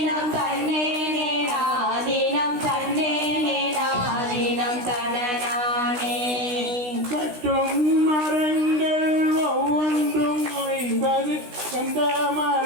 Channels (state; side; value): late; left; 16 ms